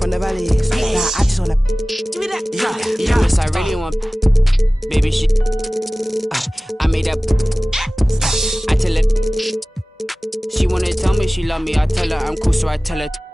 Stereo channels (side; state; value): both; normal; correlation 0.98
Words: the valleys. Like, I just wanna give me that. Yes, I really want baby shit. I made that me she love me, I tell her I'm cool, so I tell her,